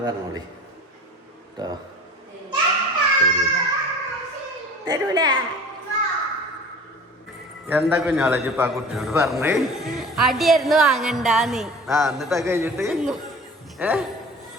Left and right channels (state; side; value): normal; both; correlation 0.42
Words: പറഞ്ഞോളി കേട്ടോ. തരൂല എന്താ കുഞ്ഞോളജി ഇപ്പൊ ആ കുട്ടിയോട് പറഞ്ഞേ? അടിയായിരുന്നു വാങ്ങണ്ടാന്ന്. എന്നിട്ടാ കഴിഞ്ഞിട്ട്